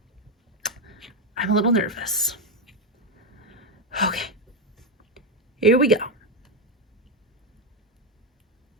I'm a little nervous. Okay. Here we go.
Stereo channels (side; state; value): both; normal; correlation 0.07